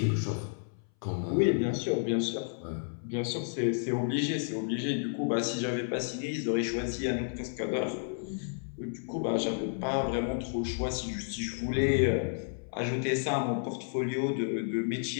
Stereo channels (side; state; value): right; silent; 57 dB below the other